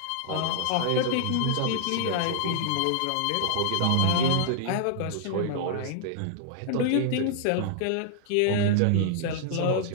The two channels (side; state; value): both; different; correlation -0.01